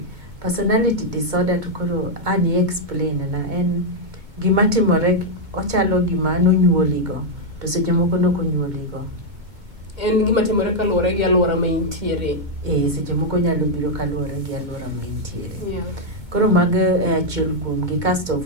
Personality disorder to koro ani explain na en gima timore, ochalo gima nonyuoligo, to seche moko nokonyuoligo. En gima timore kaluwore gi alwora ma intiere. Seche moko nyalo biro kaluwore gi alwora ma intiere. Yeah. Koro mago achiel kuomgi. Kasto of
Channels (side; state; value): left; late; 2.2 ms